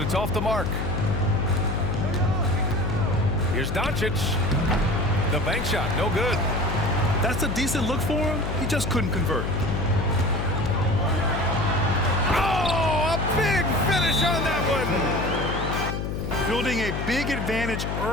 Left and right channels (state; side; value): noise; left; hum, 3 dB below the sound